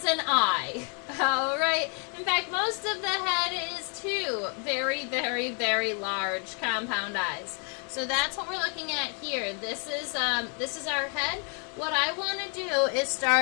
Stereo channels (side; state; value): right; quieter; 39.5 dB